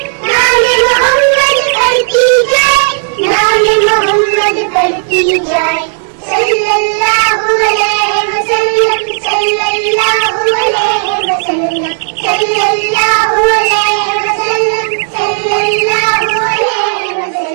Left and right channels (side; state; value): left; silent; digital silence